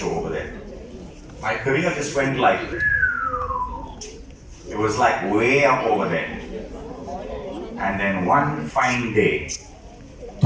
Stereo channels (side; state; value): both; identical; correlation 1.00